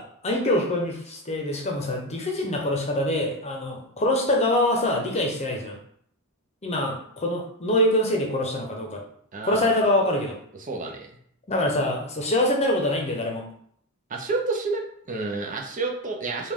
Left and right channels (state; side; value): normal; both; correlation 0.10